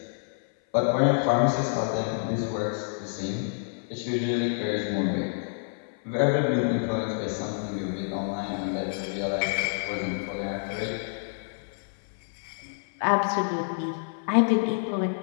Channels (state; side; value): silent; right; 56 dB below the other